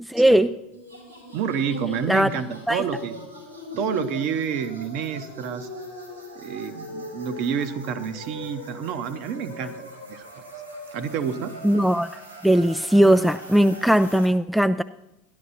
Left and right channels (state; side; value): normal; both; correlation 0.82